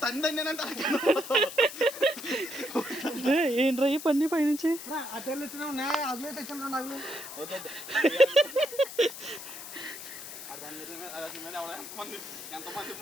ఏంట్రా ఈ పని పైనుంచి అటెళ్ళు వచ్చినా ఉన్నాయి అవి తెచ్చిన నాకు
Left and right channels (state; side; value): noise; left; hiss, 11 dB below the sound